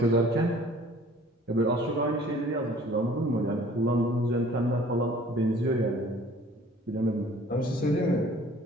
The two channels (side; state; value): both; normal; correlation 0.52